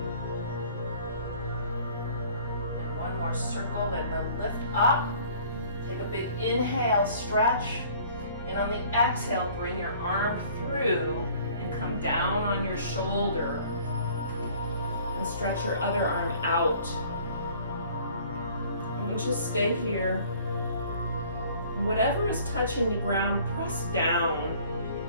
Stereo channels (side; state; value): both; inverted; correlation -0.53